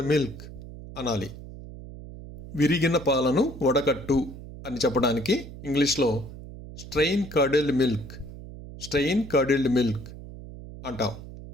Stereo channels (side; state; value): right; noise; hum, 14 dB below the sound